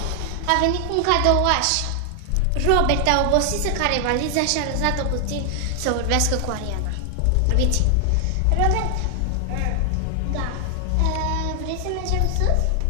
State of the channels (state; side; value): different; both; correlation 0.00